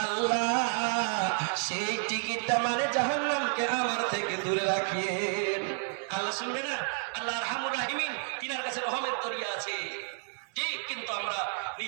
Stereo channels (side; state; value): left; silent; 57 dB below the other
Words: আল্লাহ, সেই টিকিটটা মানে জাহান্নামকে আমার থেকে দূরে রাখিয়েন। আল্লাহ শুনবে না? আল্লাহ আরহামুর রাহিমিন, তিনার কাছে রহমের দরিয়া আছে। ঠিক, কিন্তু আমরা